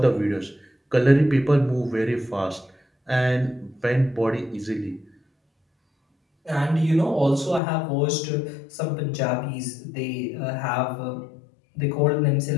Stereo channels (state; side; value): drops out; right; at 7.6 s